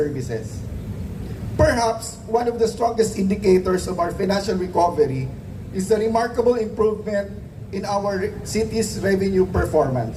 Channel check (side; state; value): both; identical; correlation 1.00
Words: Perhaps one of the strongest indicators of our financial recovery is the remarkable improvement in our city's revenue